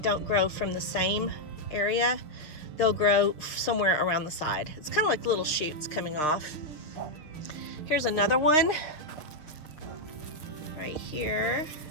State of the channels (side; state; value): right; late; 6.7 ms